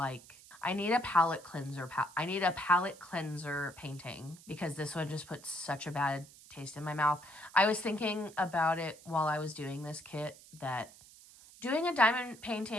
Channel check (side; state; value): right; noise; hiss, 21 dB below the sound